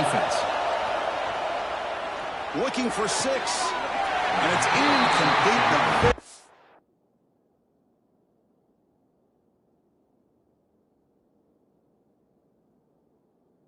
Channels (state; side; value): identical; both; correlation 1.00